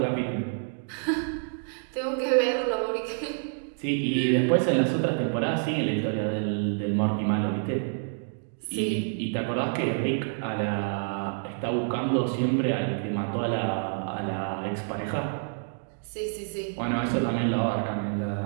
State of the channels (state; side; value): silent; left; digital silence